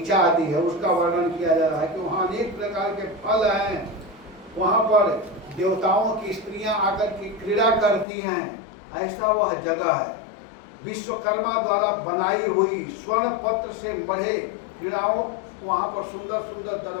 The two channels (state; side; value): drops out; right; at 8.1 s